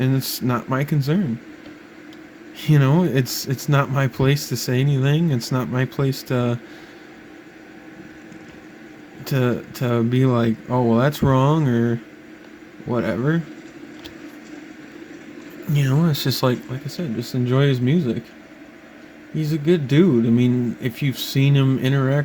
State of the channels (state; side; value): identical; both; correlation 1.00